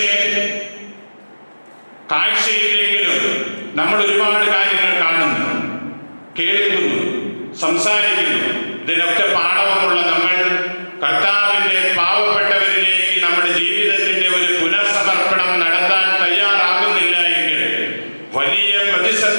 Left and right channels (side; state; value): both; inverted; correlation -1.00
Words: കാഴ്ചയില്ലെങ്കിലും നമ്മൾ ഒരുപാട് കാര്യങ്ങൾ കാണുന്നു, കേൾക്കുന്നു, സംസാരിക്കുന്നു. ഇതിനൊക്കെ പാഠവുമുള്ള നമ്മൾ കർത്താവിന്റെ പാവപ്പെട്ടവരിലേക്ക് നമ്മുടെ ജീവിതത്തിന്റെ ഒരു പുനർസമർപ്പണം നടത്താൻ തയ്യാറാകുന്നില്ല എങ്കിൽ വലിയ